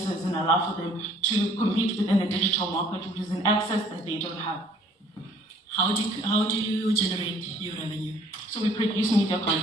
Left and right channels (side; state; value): both; normal; correlation 0.57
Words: and allow for them to compete within the digital market, which is an access that they don't have. How do you generate your revenue? So we produce media